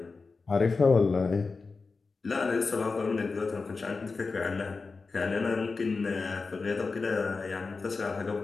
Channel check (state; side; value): quieter; right; 4.2 dB